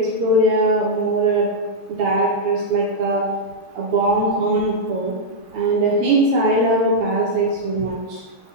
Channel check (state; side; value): late; left; 6.4 ms